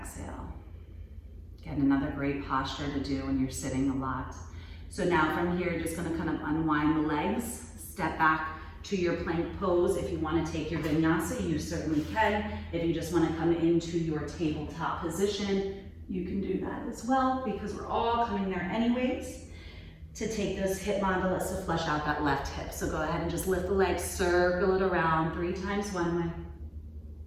Again, another great posture to do when you're sitting a lot. So now from here, you're just gonna kind of unwind the legs, step back to your plank pose. If you wanna take your vinyasa, you certainly can. If you just wanna come into your tabletop position, you can do that as well, because we're all coming there anyways. To take those hip mandibus to flush out that left hip. So go ahead and just lift the legs, circle it around 3 times one way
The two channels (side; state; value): both; identical; correlation 1.00